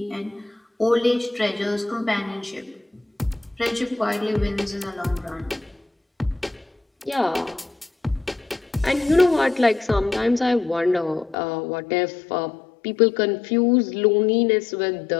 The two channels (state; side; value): drops out; right; at 11.4 s